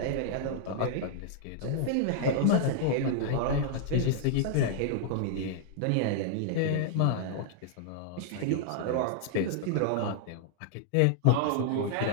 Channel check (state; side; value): different; both; correlation -0.01